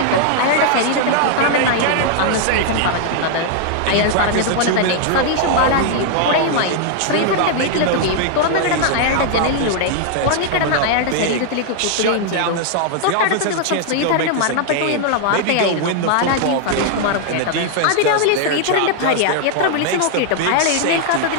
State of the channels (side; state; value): both; different; correlation 0.00